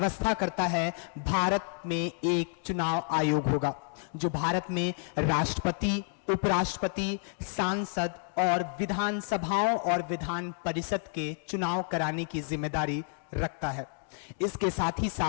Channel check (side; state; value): right; silent; 58 dB below the other